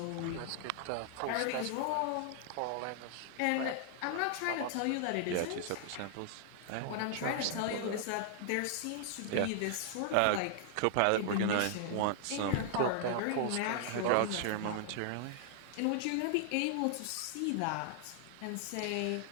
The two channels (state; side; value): different; both; correlation 0.00